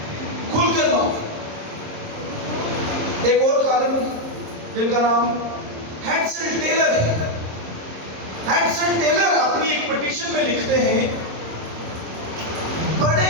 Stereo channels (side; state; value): left; late; 26 ms